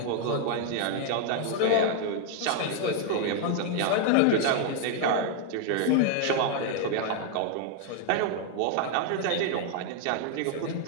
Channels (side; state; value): both; different; correlation 0.00